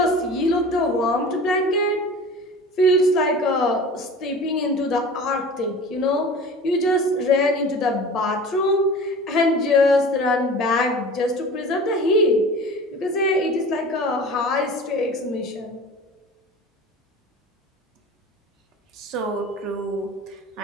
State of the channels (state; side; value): normal; both; correlation 0.38